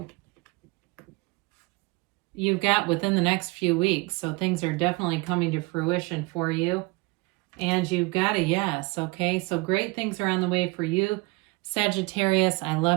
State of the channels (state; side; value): quieter; left; 25.8 dB